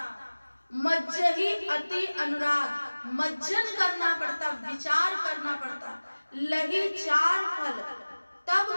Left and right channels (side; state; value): both; inverted; correlation -1.00